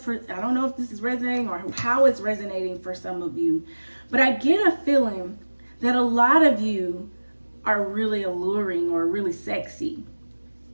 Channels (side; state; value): both; inverted; correlation -1.00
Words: this is resonating or how it's resonating for some of you, but I get a feeling that a lot of you are really alluring or really sexy,